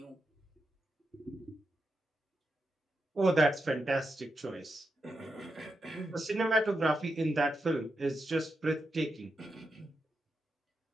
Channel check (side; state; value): both; normal; correlation 0.86